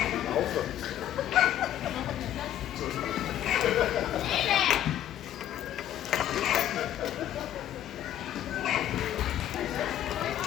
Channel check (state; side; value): quieter; right; 11.5 dB